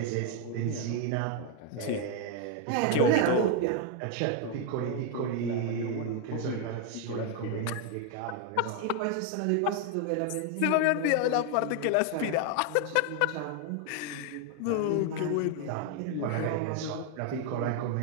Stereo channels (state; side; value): different; both; correlation 0.01